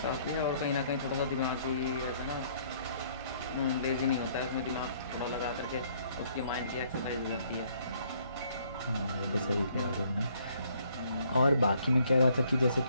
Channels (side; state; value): both; inverted; correlation -0.64